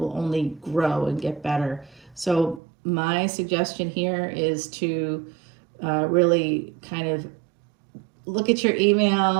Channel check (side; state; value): left; drops out; at 2.6 s